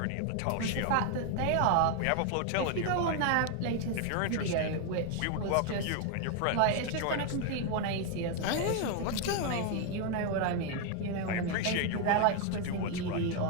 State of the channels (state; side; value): different; both; correlation 0.01